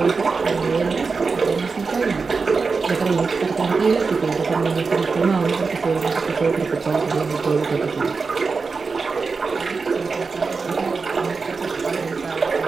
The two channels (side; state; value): left; quieter; 4.6 dB